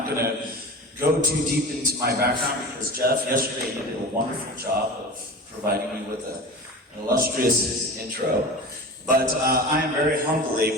going to go too deep into my background because Jeff, yesterday, he did a wonderful job of providing me with an illustrious intro. But I am very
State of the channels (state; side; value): normal; both; correlation 0.33